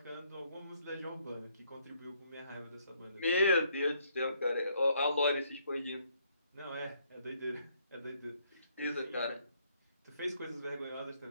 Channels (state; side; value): inverted; both; correlation -0.70